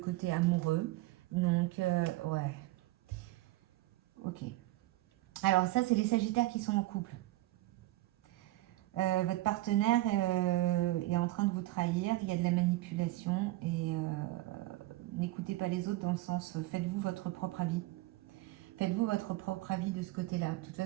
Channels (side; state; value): left; quieter; 17.6 dB